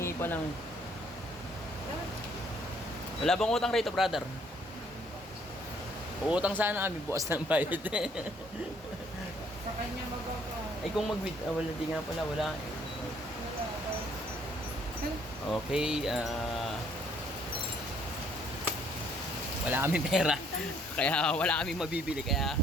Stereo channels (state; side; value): normal; both; correlation 0.64